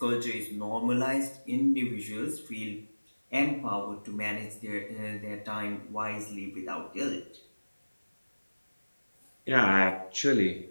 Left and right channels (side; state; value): both; inverted; correlation -1.00